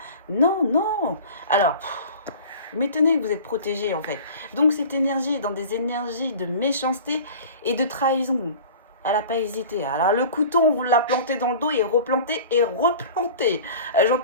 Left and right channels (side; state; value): both; inverted; correlation -0.40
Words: Non, non. Alors, m'étonnez que vous êtes protégés en fait. Donc cette énergie est dans des énergies de méchanceté et de trahison. Elle n'a pas hésité. Alors le couteau, on vous l'a planté dans le dos et replanté et replanté.